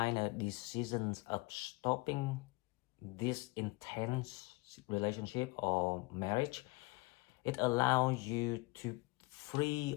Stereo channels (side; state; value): right; quieter; 24.2 dB